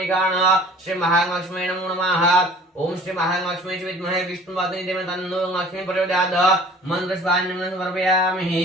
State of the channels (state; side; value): normal; both; correlation 0.49